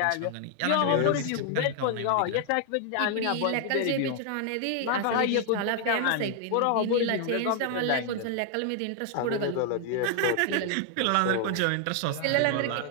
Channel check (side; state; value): both; different; correlation 0.00